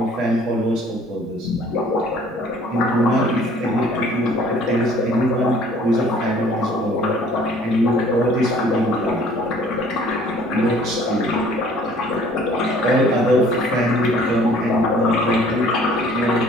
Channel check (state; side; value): normal; both; correlation 0.55